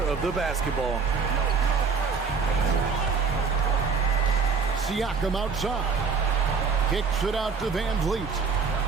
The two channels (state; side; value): quieter; left; 5.3 dB